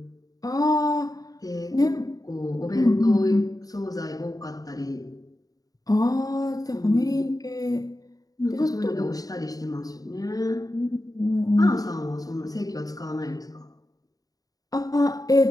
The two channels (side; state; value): right; late; 0.18 ms